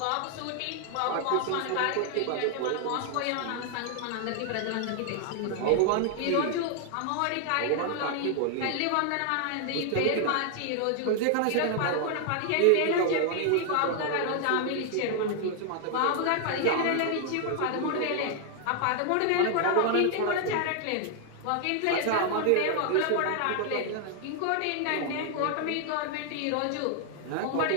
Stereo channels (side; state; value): both; different; correlation 0.00